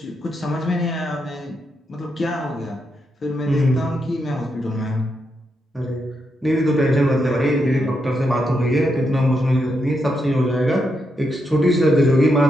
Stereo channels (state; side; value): normal; both; correlation 0.82